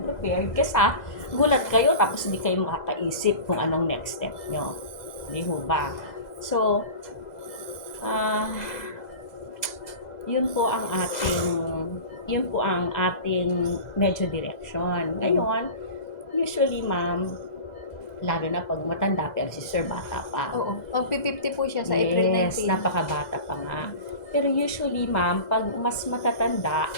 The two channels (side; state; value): right; late; 2.0 ms